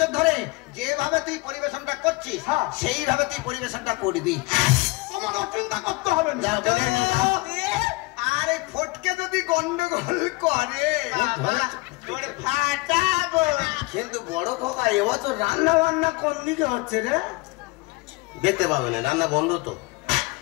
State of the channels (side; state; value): right; quieter; 24.2 dB